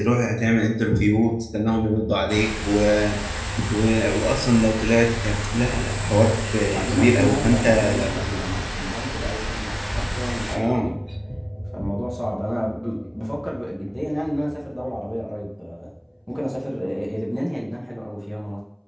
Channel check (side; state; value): both; identical; correlation 1.00